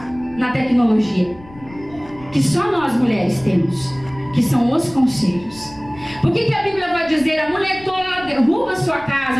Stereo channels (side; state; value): left; noise; rumble, 21 dB below the sound